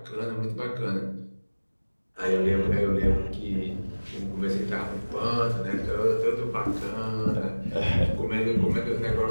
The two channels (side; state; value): both; inverted; correlation -1.00